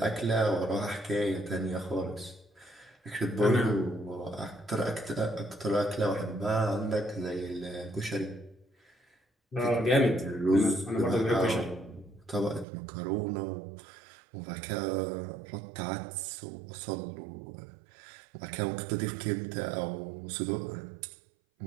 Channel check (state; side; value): drops out; left; at 12.7 s